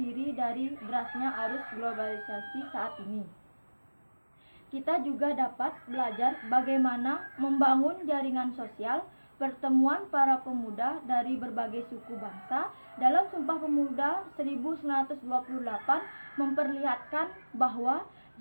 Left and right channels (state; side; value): inverted; both; correlation -1.00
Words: dari derasnya arus globalisasi saat ini. Kita juga dapat belajar bagaimana membangun jaringan sosial pertemuan para pemuda dari berbagai suku bangsa. Dalam Sumpah Pemuda 1928 memperlihatkan bahwa